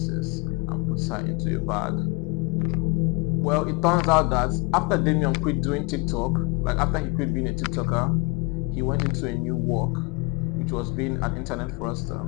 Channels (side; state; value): right; quieter; 28.7 dB